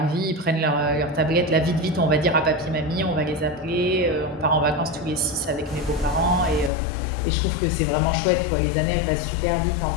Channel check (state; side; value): drops out; right; at 6.7 s